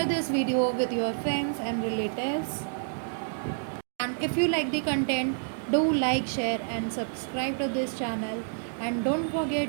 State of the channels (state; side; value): silent; left; digital silence